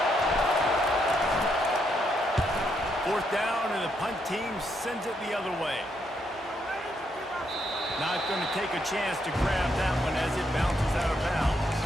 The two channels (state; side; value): normal; both; correlation 0.77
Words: Fourth down, and the punt team sends it the other way. Not going to take a chance to grab that one as it bounces out of bounds.